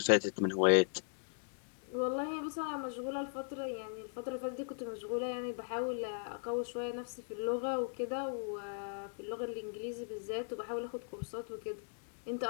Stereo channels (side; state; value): right; silent; digital silence